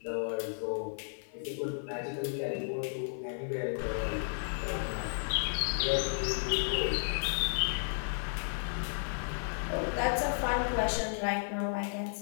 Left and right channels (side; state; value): right; silent; 55 dB below the other